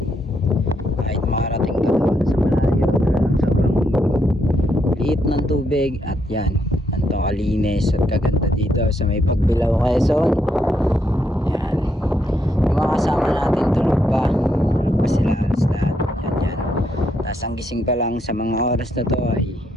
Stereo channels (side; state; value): both; normal; correlation 0.77